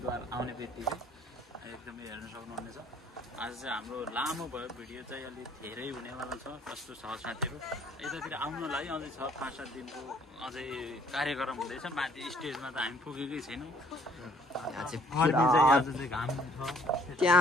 आउने बित्तिकै एकदमै हेर्न सक्नुहुनेछ। आज चाहिँ हाम्रो लामो भयो भिडियो चाहिँ अलि धेरै हुनेवाला छ। कस्तो छ साथीहरु यतातिर आउनलाई अझै छ 5-7 दिनको अझै कार्यक्रम हुँदैछ। माथि स्टेजमा त हामी पुगेकै छैनौँ। यहाँ चाहिँ घाम छ।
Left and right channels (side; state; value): both; normal; correlation 0.62